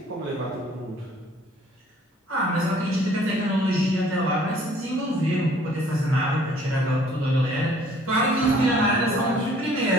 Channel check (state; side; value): normal; both; correlation 0.57